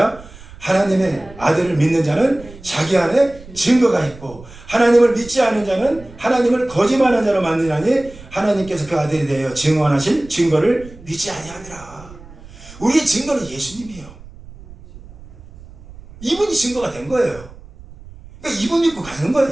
하나님의 아들을 믿는 자는 자기 안에 증거가 있고 하나님을 믿지 않은 자는 하나님을 거짓말하는 자로 만드나니 하나님께서 그 아들에 대하여 증언하신 증거를 믿지 아니하니라. 우리의 증거는 예수님이에요. 이분이 증거가 된 거예요. 그러니까 이분 믿고 가는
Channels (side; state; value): right; noise; rumble, 19 dB below the sound